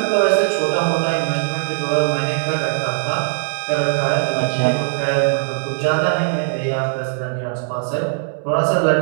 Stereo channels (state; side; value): silent; left; digital silence